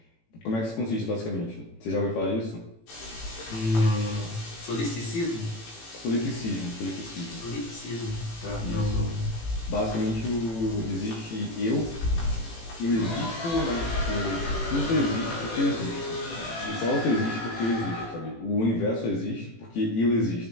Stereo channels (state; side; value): late; right; 18 ms